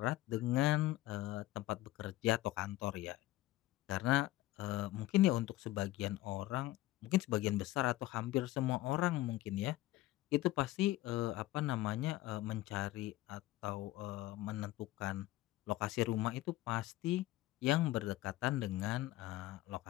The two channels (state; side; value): quieter; right; 16.6 dB